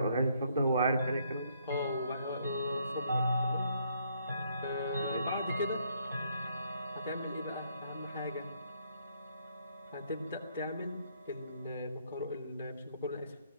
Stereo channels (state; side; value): inverted; both; correlation -0.70